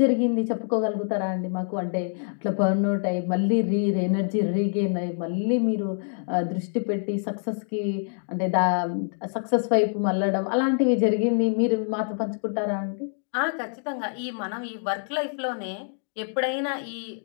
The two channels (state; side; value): silent; right; digital silence